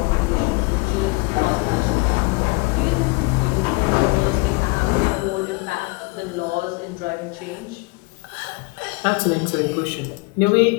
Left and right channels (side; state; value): right; quieter; 27.0 dB